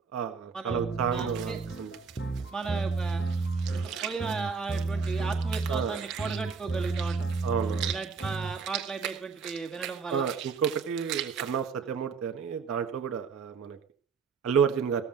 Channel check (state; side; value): quieter; left; 5.3 dB